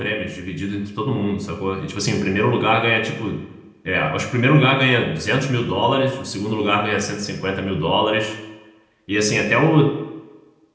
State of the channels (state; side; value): identical; both; correlation 1.00